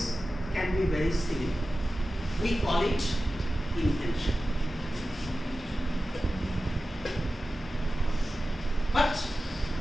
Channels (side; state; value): both; normal; correlation 0.94